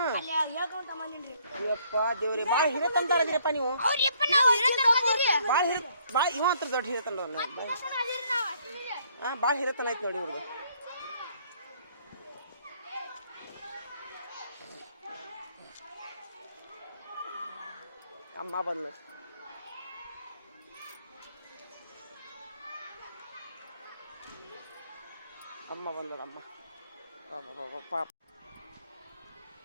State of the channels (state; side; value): inverted; both; correlation -0.66